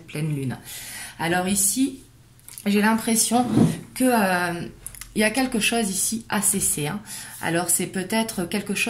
pleine lune. Alors ici, j'ai l'impression que il y a quelque chose ici à cesser. Alors c'est peut-être quelque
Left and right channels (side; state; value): both; identical; correlation 1.00